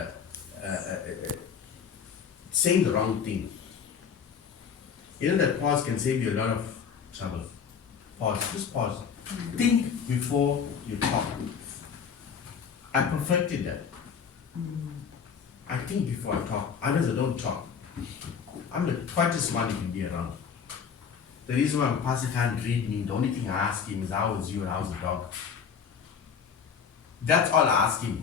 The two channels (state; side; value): quieter; right; 6.8 dB